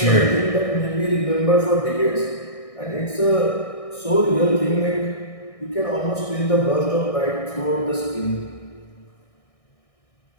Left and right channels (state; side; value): late; right; 1.6 ms